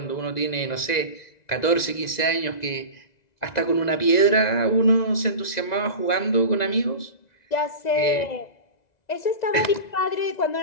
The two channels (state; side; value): late; right; 2.0 ms